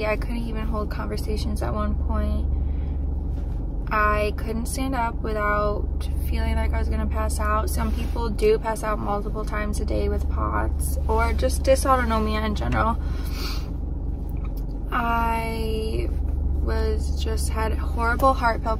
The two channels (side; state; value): both; identical; correlation 1.00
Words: I couldn't even hold conversations at one point. I couldn't stand up without feeling like I was gonna pass out. Some people do pass out multiple times a day with POTS or just dysautonomia in general. I had horrible heart